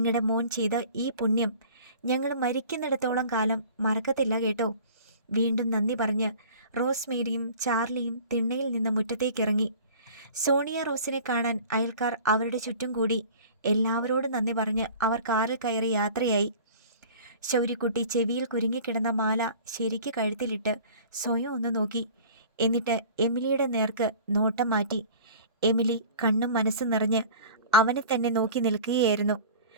മോൻ ചെയ്ത ഈ പുണ്യം ഞങ്ങൾ മരിക്കുന്നിടത്തോളം കാലം മറക്കത്തില്ല കേട്ടോ. വീണ്ടും നന്ദി പറഞ്ഞ് റോസ്മേരിയും ചാർലിയും തിണ്ണയിൽ നിന്ന് മുറ്റത്തേക്കിറങ്ങി. സോണിയ റോസിനെ കാണാൻ അയൽക്കാർ അവരുടെ ചുറ്റും കൂടി. എല്ലാവരോടും നന്ദി പറഞ്ഞ് അവർ കാറിൽ കയറി യാത്രയായി. ശൗര്യക്കുട്ടി ചെവിയിൽ കുരുങ്ങിക്കിടന്ന മാല ശരിക്ക് കഴുത്തിലിട്ട് സ്വയം ഒന്ന് നോക്കി. എന്നിട്ട് എമിലിയുടെ നേർക്ക് നോട്ടം മാറ്റി. എമിലി കണ്ണും മനസ്സും നിറഞ്ഞ് അവനെ തന്നെ നോക്കി നിൽക്കുകയായിരുന്നു.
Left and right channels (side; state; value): both; inverted; correlation -0.44